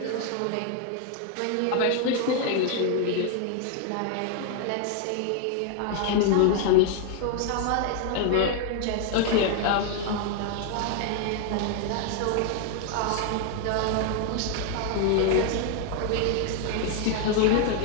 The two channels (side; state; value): both; different; correlation 0.00